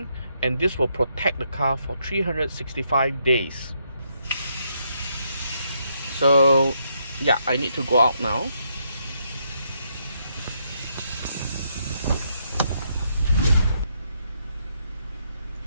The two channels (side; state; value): both; inverted; correlation -0.76